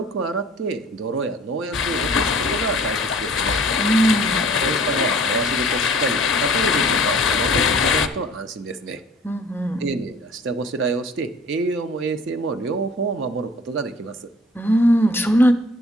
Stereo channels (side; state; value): both; normal; correlation 0.50